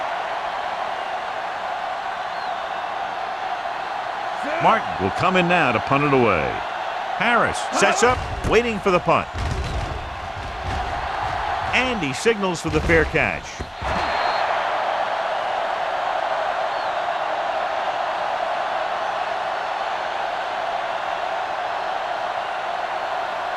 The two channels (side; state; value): both; identical; correlation 1.00